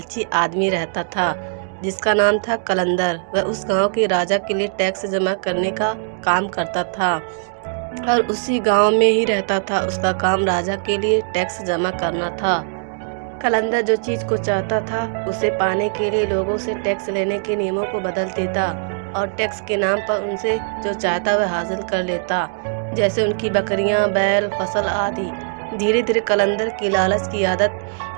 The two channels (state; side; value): silent; left; digital silence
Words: आदमी रहता था जिसका नाम था कलंदर। वह उस गांव के राजा के लिए टैक्स जमा करने का काम करता था और उसी गांव में ही रहता था। उसका काम राजा के लिए टैक्स जमा करना था। कलंदर जो चीज को चाहता था उसे पाने के लिए लोगों से टैक्स लेने के नियमों को बदल देता और टैक्स के नाम पर उनसे जो चाहता वह हासिल कर लेता, जैसे उनकी बकरियां, बैल, फसल आदि। धीरे धीरे कलंदर की लालच की आदत